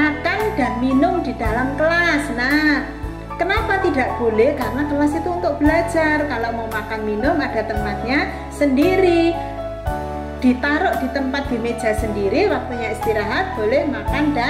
dan minum di dalam kelas. Nah, kenapa tidak boleh? Karena kelas itu untuk belajar. Kalau mau makan minum ada tempatnya sendiri, ditaruh di tempat di meja sendiri. Waktunya istirahat boleh makan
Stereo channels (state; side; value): identical; both; correlation 1.00